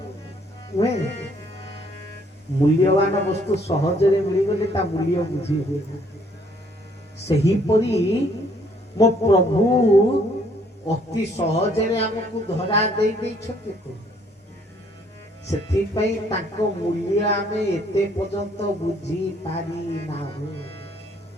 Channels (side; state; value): both; normal; correlation 0.64